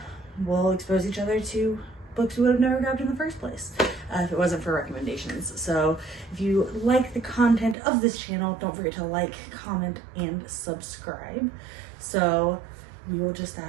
we'll expose each other to books we would have never grabbed in the first place if it wasn't for recommendations. So if you like the content of this channel, don't forget to like, comment, and subscribe. So we will just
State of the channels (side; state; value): left; drops out; at 7.8 s